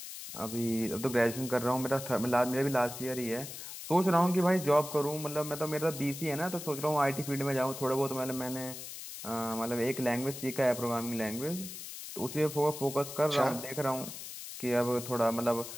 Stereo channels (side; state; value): left; noise; hiss, 10 dB below the sound